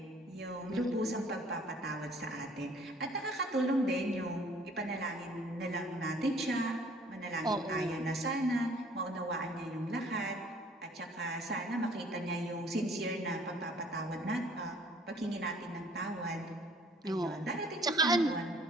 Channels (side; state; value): both; normal; correlation 0.56